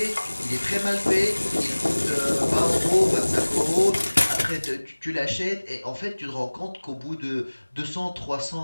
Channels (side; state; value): both; inverted; correlation -1.00